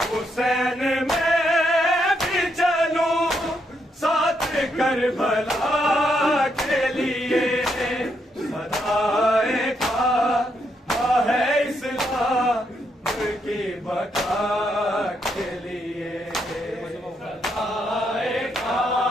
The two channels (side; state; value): both; normal; correlation 0.78